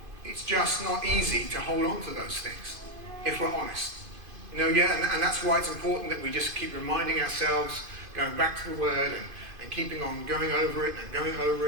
it's just not easy to hold on to those things, if we're honest. And that's why it's important that we just keep reminding ourselves, going back to the word and keeping on going over it until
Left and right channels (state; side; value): late; left; 2.5 ms